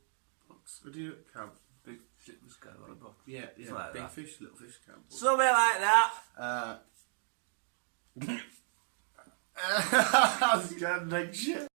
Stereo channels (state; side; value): silent; left; 55 dB below the other